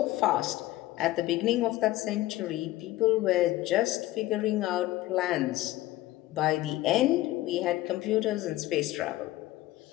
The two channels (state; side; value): quieter; right; 16.4 dB